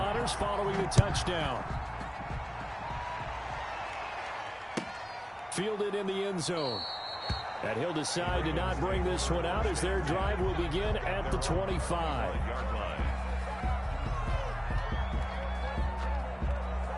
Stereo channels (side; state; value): both; identical; correlation 1.00